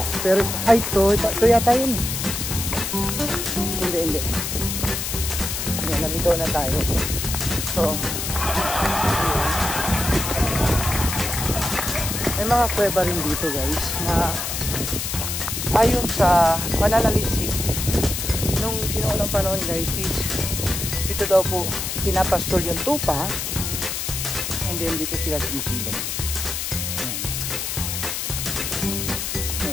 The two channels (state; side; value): noise; left; hiss, 3 dB below the sound